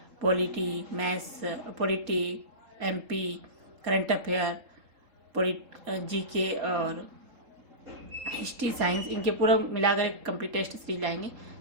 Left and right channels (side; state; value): left; late; 3.7 ms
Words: polity, maths, polity, MP, current affair, GK और हिस्ट्री, साइंस, इनके पूरा मिलाकर एक कंप्लीट टेस्ट सीरीज लाएंगे।